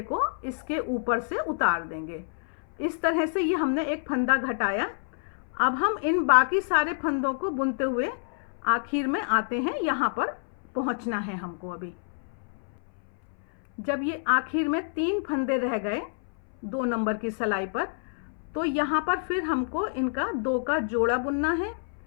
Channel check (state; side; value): silent; right; 58 dB below the other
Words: को इसके ऊपर से उतार देंगे। इस तरह से ये हमने एक फंदा घटाया। अब हम इन बाकी सारे फंदों को बुनते हुए आखिर में आते हैं, यहाँ पर पहुँचना है हमको। अभी जब ये आखिर में 3 फंदे रह गए 2 नंबर की सिलाई पर, तो यहाँ पर फिर हमको इनका 2 का जोड़ा बुनना है